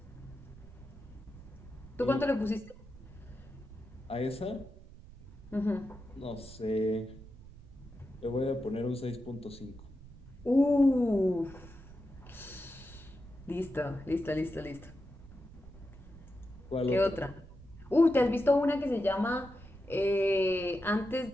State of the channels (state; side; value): noise; right; rumble, 18 dB below the sound